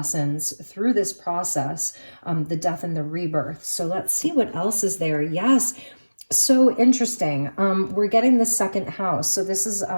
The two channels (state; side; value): inverted; both; correlation -1.00